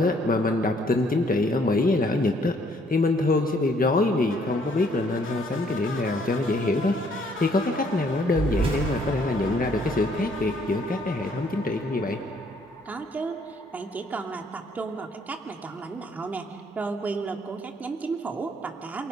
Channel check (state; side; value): normal; both; correlation 0.65